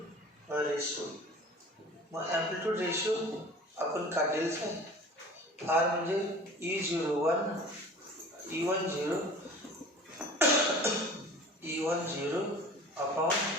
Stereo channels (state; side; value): normal; both; correlation 0.42